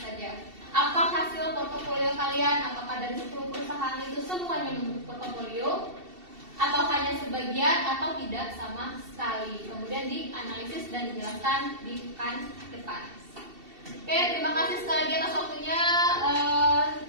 Apa hasil portofolio kalian? Apakah dari 10 perusahaan itu semuanya membentuk portofolio, atau hanya sebagian, atau tidak sama sekali? Kemudian dianalisis dan dijelaskan di pekan depan. Oke, terima kasih sekali lagi atas waktunya.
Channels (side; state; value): left; late; 2.7 ms